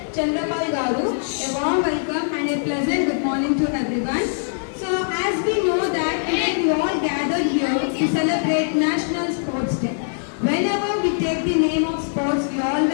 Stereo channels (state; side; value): silent; right; digital silence